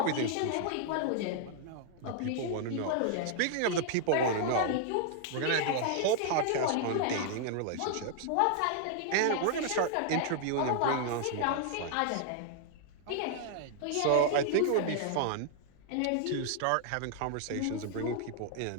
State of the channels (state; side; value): different; both; correlation 0.00